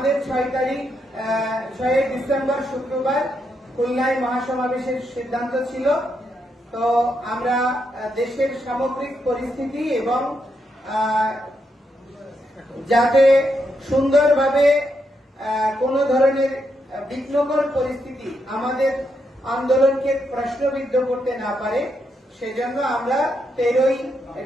6 ডিসেম্বর শুক্রবার খুলনায় মহাসমাবেশের সিদ্ধান্ত ছিল। তো আমরা দেশের সামগ্রিক পরিস্থিতি এবং যাতে সুন্দরভাবে কোনো ধরনের বিঘ্নকর পরিস্থিতি আমাদের আন্দোলনকে প্রশ্নবিদ্ধ করতে না পারে, সেজন্য আমরা 13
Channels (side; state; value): both; normal; correlation 0.81